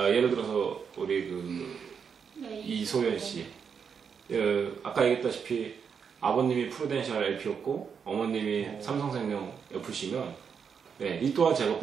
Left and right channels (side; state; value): left; quieter; 6.6 dB